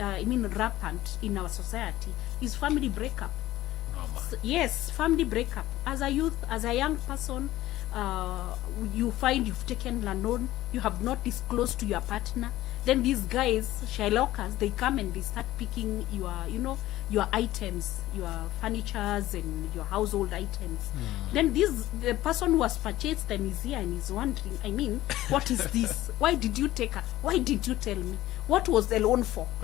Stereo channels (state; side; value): quieter; right; 15.5 dB